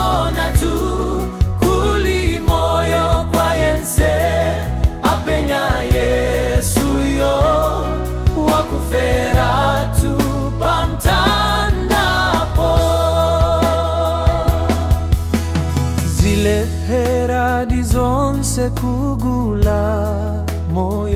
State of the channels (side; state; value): both; identical; correlation 1.00